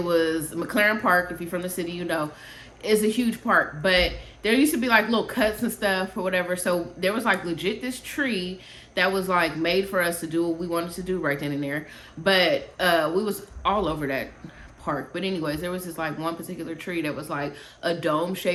was McLaren Park. If you're from the city, you know it's a huge park, but there used to be like little cuts and stuff or whatever. So there was like legit this tree that was like made for us to do what we wanted to do right then and there. But we was all over that park. But anyways, there was this like one particular tree that was like a dome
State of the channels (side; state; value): both; identical; correlation 1.00